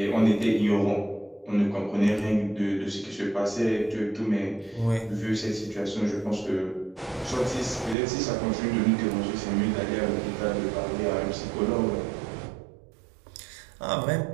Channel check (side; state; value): left; drops out; at 8.0 s